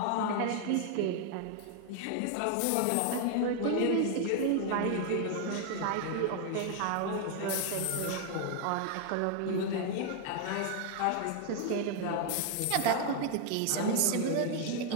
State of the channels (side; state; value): both; different; correlation 0.00